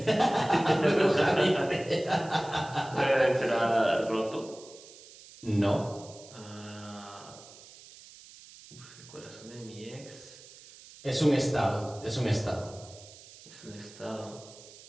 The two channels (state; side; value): noise; right; hiss, 20 dB below the sound